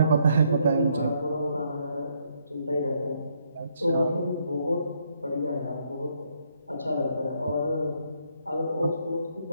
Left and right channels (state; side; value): inverted; both; correlation -0.73